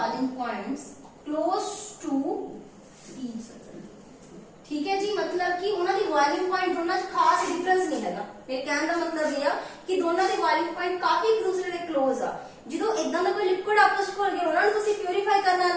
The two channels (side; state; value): both; identical; correlation 1.00